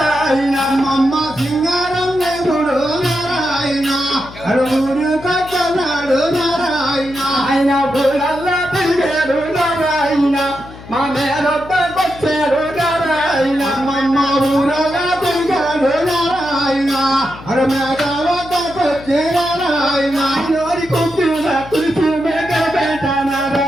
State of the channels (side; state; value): left; noise; hum, 17 dB below the sound